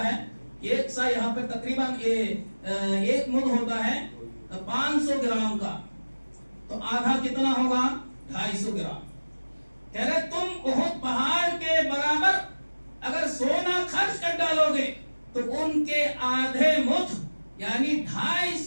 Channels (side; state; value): both; inverted; correlation -1.00